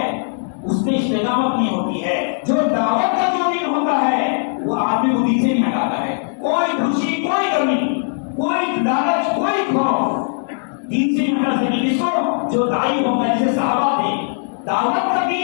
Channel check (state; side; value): silent; right; digital silence